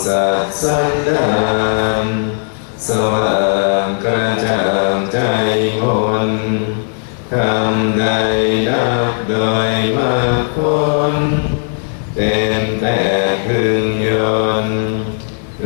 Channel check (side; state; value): right; silent; digital silence